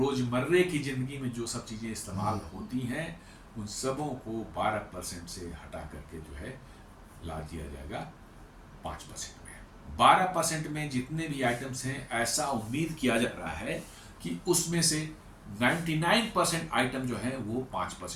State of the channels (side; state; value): both; identical; correlation 1.00